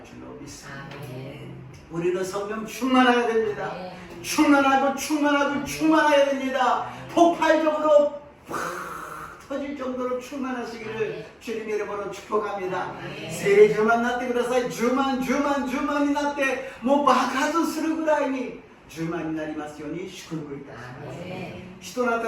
줄로 믿습니다. 우리는 성령 충만해야 됩니다. 충만해야 됩니다. 폭발적으로 터질 정도로 충만하시기를 주님의 이름으로 축복합니다. 세례 주만なってください. 주만になってもう爆発するぐらいに주만になりますように祝福いたします. 使徒の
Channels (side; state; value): both; identical; correlation 1.00